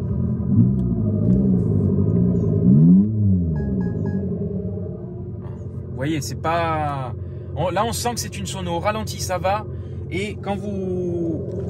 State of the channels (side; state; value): both; identical; correlation 1.00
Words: Vous voyez, c'est pas... Là, on sent que c'est une sono. Au ralenti, ça va. Et quand vous